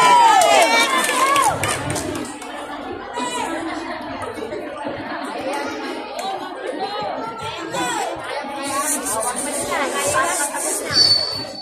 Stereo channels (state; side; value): identical; both; correlation 1.00